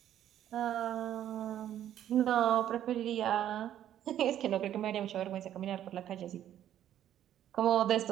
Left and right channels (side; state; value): left; quieter; 11.2 dB